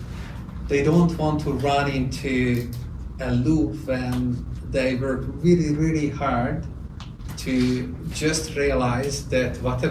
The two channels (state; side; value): identical; both; correlation 1.00